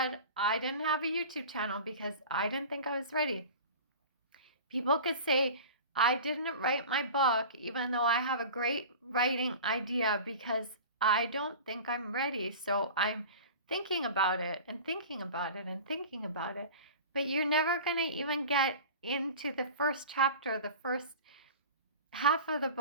I didn't have a YouTube channel because I didn't think I was ready. People could say, I didn't write my book even though I have a great writing idea because I don't think I'm ready. So I'm thinking about it and thinking about it and thinking about it. But you're never going to even get into the first chapter, the first half of the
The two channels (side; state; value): both; inverted; correlation -0.36